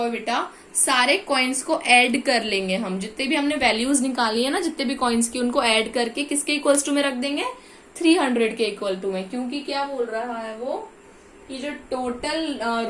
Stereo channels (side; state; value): both; identical; correlation 1.00